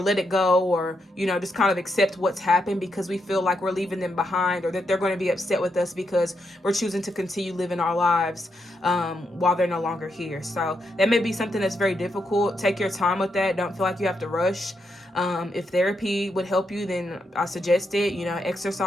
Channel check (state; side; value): normal; both; correlation 0.81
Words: let it go or, just kind of accept what's happened because we feel like we're leaving them behind or that they're going to be upset with us because we're choosing to continue living our lives while they're no longer here. So that may be something that's very difficult. Take your time with that. Don't feel like you have to rush. If therapy would help you, then I suggest it.